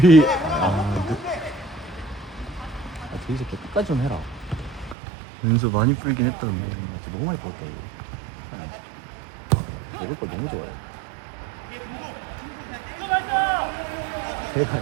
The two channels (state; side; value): drops out; left; at 5.0 s